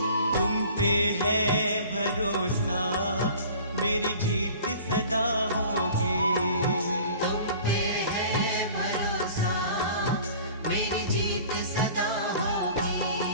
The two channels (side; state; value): both; inverted; correlation -0.45